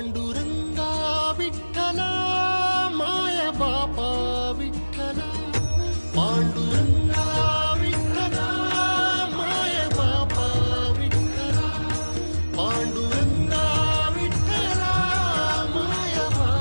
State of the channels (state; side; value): inverted; both; correlation -1.00